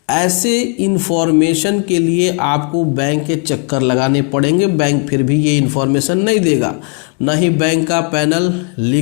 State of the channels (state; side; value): quieter; right; 38.3 dB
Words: ऐसे इन्फॉर्मेशन के लिए आपको बैंक के चक्कर लगाने पड़ेंगे। बैंक फिर भी ये इन्फॉर्मेशन नहीं देगा, ना ही बैंक का पैनल,